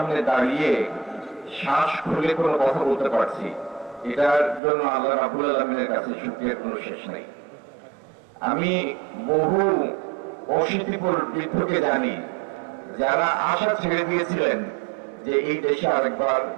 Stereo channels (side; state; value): left; drops out; at 4.6 s